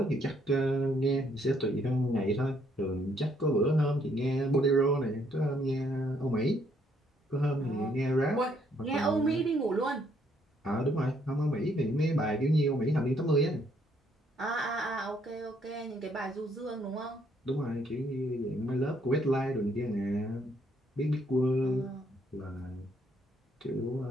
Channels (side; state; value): both; normal; correlation 0.69